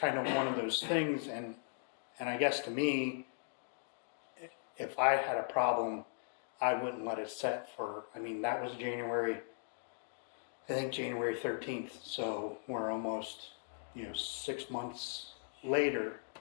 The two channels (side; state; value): right; silent; digital silence